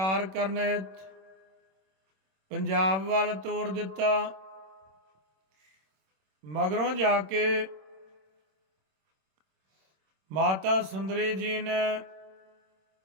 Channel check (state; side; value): late; left; 26 ms